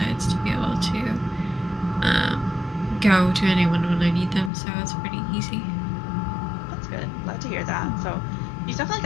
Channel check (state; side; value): drops out; right; at 4.5 s